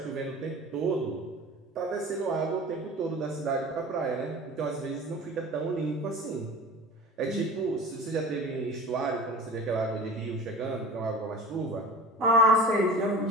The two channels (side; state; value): both; normal; correlation 0.37